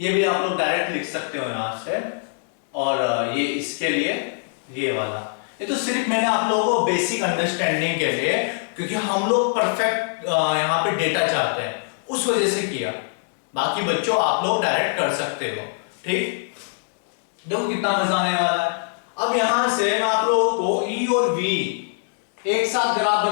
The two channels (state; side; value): silent; right; digital silence